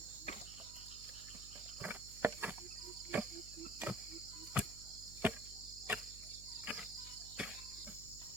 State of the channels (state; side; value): noise; right; hum, 13 dB below the sound